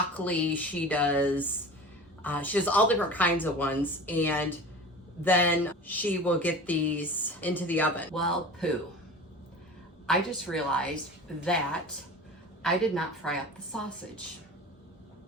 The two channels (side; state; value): both; normal; correlation 0.36